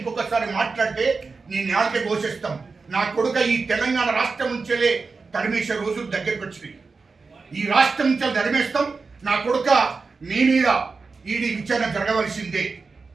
మాట్లాడితే నేను నాలుగే ఘోషిస్తాం. నా కొడుక ఈ తెలంగాణ రాష్ట్రం నుంచేలే తరిమేసే రోజులు దగ్గరికి వచ్చినాయి. ఈ రాష్ట్రం నుంచి తరిమేస్తాం. నా కొడుక మీ మీద ఈడీ విచారణ జరగవలసిందే,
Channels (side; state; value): left; quieter; 4.4 dB